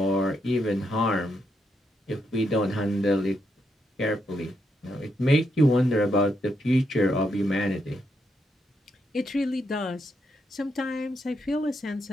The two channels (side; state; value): both; normal; correlation 0.80